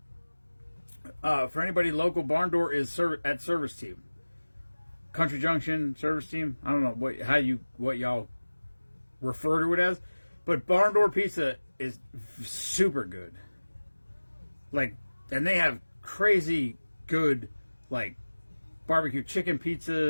For anybody local, Barn Door is at Service Team. Country Junction Service Team. I don't know what y'all refer to it as, but Barn Door Pizza is super good. Like, and they have crazy good like barbecue chicken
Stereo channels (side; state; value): both; inverted; correlation -1.00